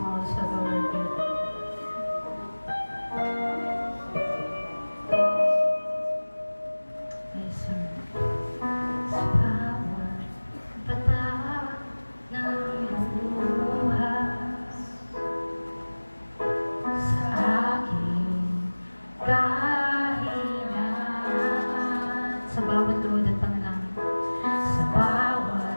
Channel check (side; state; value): both; inverted; correlation -1.00